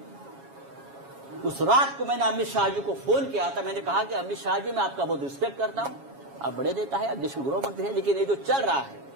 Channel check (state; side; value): late; left; 7.3 ms